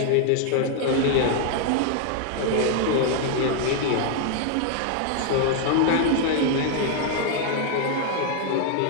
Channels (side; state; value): both; different; correlation 0.00